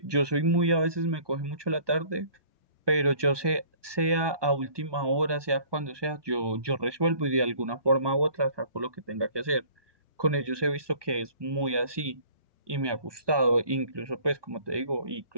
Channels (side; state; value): left; late; 1.2 ms